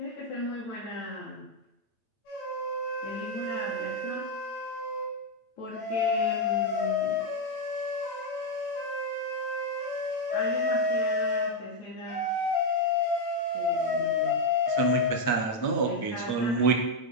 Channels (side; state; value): right; late; 9.0 ms